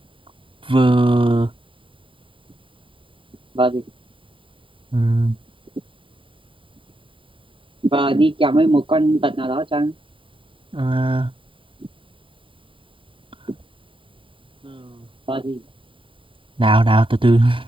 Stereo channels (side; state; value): left; late; 0.25 ms